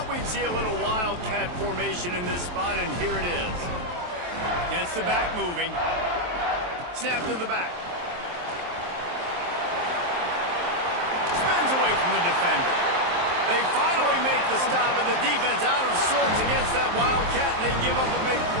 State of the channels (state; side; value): late; left; 23 ms